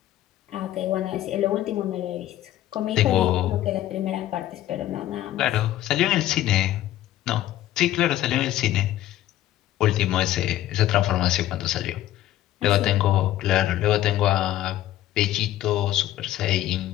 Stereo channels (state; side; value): quieter; right; 13.6 dB